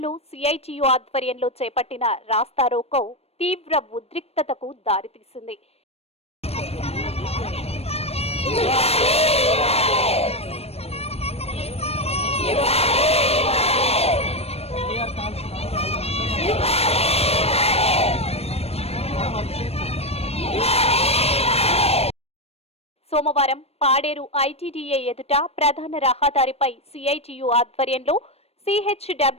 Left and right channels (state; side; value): late; right; 0.29 ms